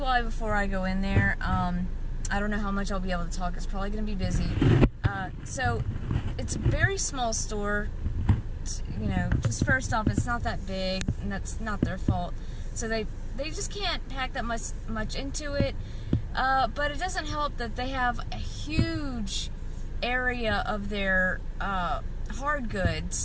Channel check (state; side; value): identical; both; correlation 1.00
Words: why before I go in there. I don't know how much I'll be able to talk. It's probably going to be busy. So it's a very small store. You know, just first off, it's not that big, and that's not their fault. So they just can't pack that much into it. But it doesn't help that they have a huge area of their hard